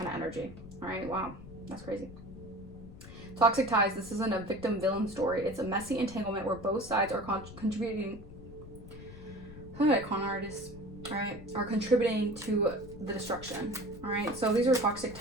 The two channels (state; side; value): noise; left; rumble, 15 dB below the sound